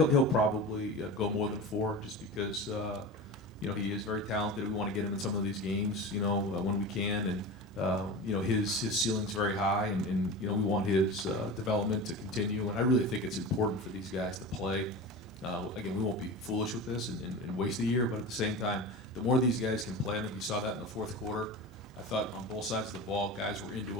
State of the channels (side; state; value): both; normal; correlation 0.30